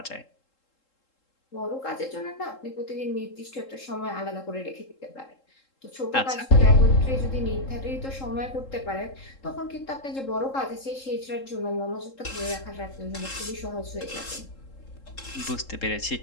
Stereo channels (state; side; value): late; right; 3.7 ms